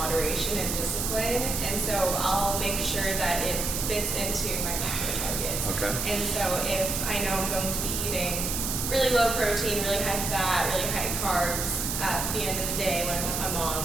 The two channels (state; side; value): noise; right; hiss, 1 dB below the sound